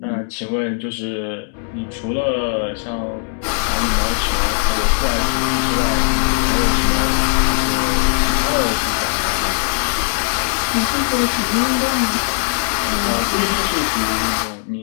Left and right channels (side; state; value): right; silent; digital silence